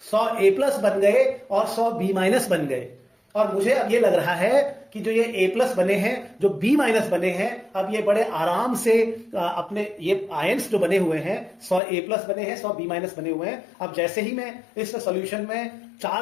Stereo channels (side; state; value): right; drops out; at 11.8 s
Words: 100 ए प्लस बन गए और 100 बी माइनस बन गए। और मुझे अब ये लग रहा है कि जो ये ए प्लस बने हैं, जो बी माइनस बने हैं, अब ये बड़े आराम से अपने ये आयंस जो बने हुए हैं, 100 ए प्लस बने हैं, 100 बी माइनस बने हुए हैं। अब जैसे ही मैं इस सॉल्यूशन में